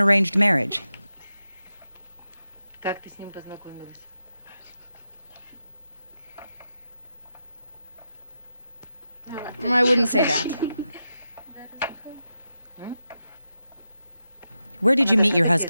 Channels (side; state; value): both; inverted; correlation -0.89